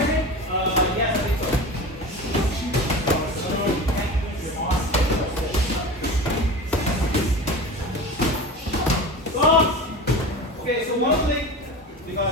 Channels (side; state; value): both; normal; correlation 0.31